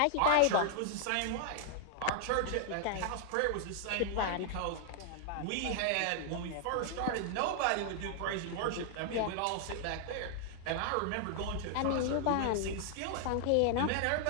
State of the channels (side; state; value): both; different; correlation 0.00